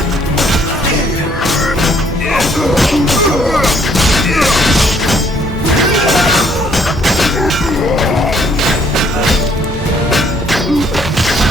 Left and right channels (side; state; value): both; normal; correlation 0.64